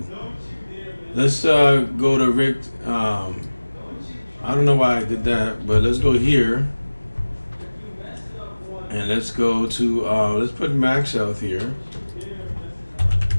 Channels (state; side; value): inverted; both; correlation -1.00